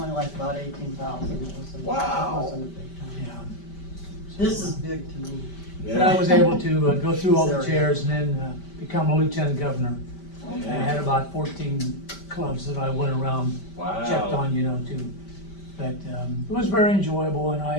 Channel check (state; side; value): late; right; 5.1 ms